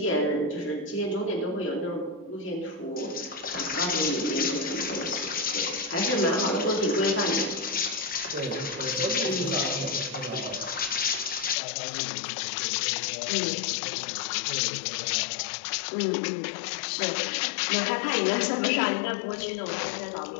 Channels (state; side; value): drops out; right; at 11.6 s